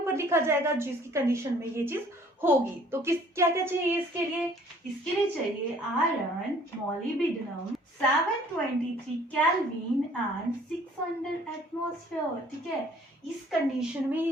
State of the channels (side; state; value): both; normal; correlation 0.56